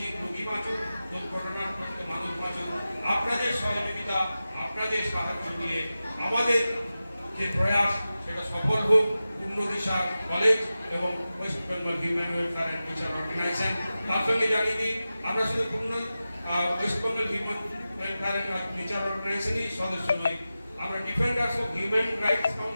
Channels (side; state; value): both; inverted; correlation -0.94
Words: বাঁচুক, দুর্ঘটনাগ্রস্ত মানুষ বাঁচুক। আপনাদের সহযোগিতা, আপনাদের সাহায্য নিয়ে আমাদের যে প্রয়াস সেটা সফল হোক। পূর্ণ দিশা কলেজ এবং West Bengal human welfare and teacher organisation. তার সঙ্গে জানিয়ে দিই আমরা শুধু Purna West Bengal human welfare and teacher অর্গানাইজেশনই সদস্য নই, আমরা ডিফেন্ডার্স অফ হিউম্যান রাইটস